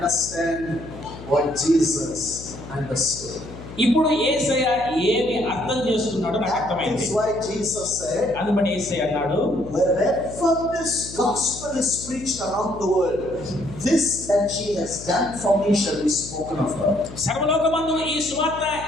what Jesus understood. ఇప్పుడు యేసయ్య ఏమి అర్థం చేసుకున్నాడో నాకు అర్థమైంది. That's why Jesus said, అందుబట్టి యేసయ్య అన్నాడు, wherever this gospel is preached around the world, this that she has done for me shall be spoken of her. సర్వలోకమందు ఈ సువార్త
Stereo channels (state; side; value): noise; left; hum, 14 dB below the sound